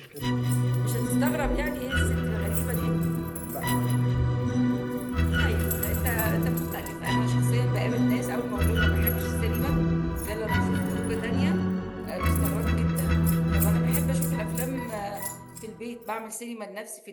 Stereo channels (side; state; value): both; identical; correlation 1.00